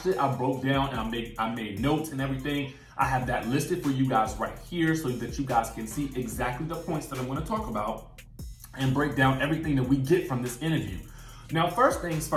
it, I broke down, and I made notes and everything. I have that listed for you guys right here so that you guys can see exactly the points that I'm going to talk about and break down everything that we get from this interview. Now, first things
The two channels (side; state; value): both; identical; correlation 1.00